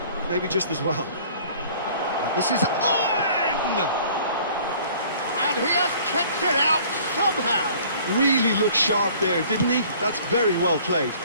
maybe just as well. This is Owen! And he has kept it out somehow. Really looked sharp there, didn't he? That's very well played.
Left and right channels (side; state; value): both; inverted; correlation -0.52